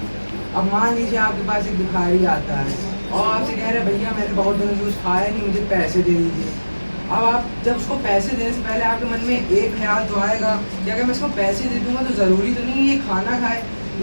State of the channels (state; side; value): inverted; both; correlation -1.00